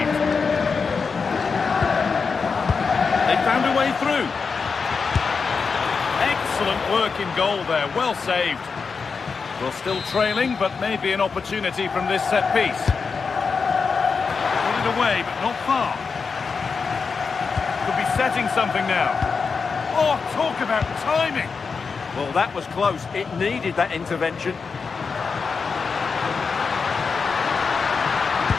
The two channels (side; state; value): right; quieter; 5.2 dB